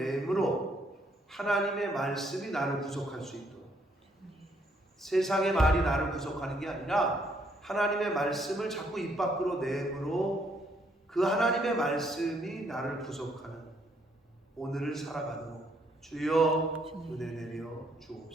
하나님의 말씀이 나를 구속할 수 있도록, 세상의 말이 나를 구속하는 게 아니라 하나님의 말씀을 자꾸 입 밖으로 내므로 그 하나님의 말씀이 나를 구속하는 오늘을 살아가도록 주여 은혜 내려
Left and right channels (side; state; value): both; normal; correlation 0.70